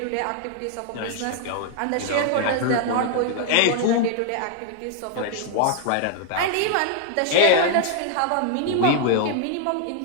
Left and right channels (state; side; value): different; both; correlation 0.00